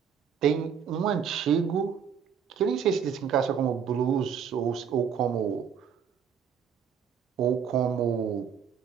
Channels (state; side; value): quieter; left; 7.6 dB